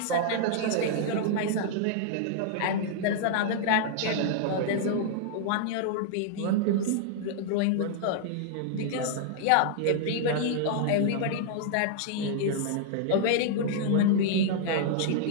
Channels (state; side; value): different; both; correlation -0.01